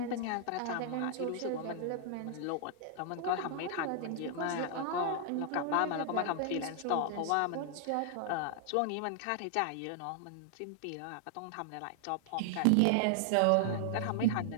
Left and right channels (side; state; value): both; different; correlation 0.00